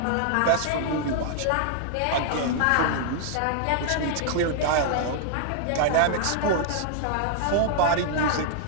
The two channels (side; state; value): both; different; correlation 0.00